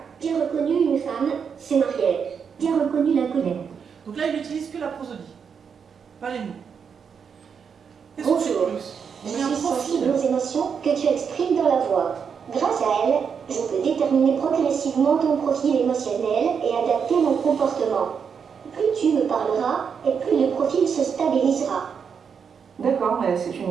J'ai reconnu une femme, c'est Mariette. J'ai reconnu la colère. Donc là, il n'utilise que la prosodie, pas les mots. Bonjour, je suis sensible aux émotions que tu exprimes dans la voix. Grâce à elle, je peux déterminer progressivement ton profil émotionnel et adapter mon comportement. Plus tu me parleras et plus le profil se stabilisera. D'accord, c'est une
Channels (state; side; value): quieter; left; 6.7 dB